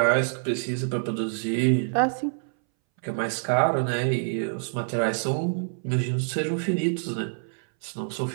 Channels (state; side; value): silent; left; 61 dB below the other